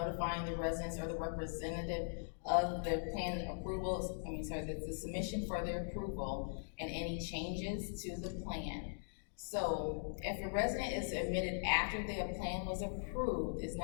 the residents or the representative of the plan approval, the submission for their approval and any changes to the plan. So if a resident is admitted after their plan was approved, it's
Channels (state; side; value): silent; right; digital silence